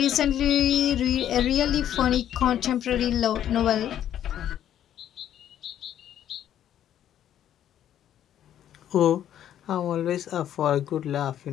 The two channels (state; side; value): quieter; right; 10.8 dB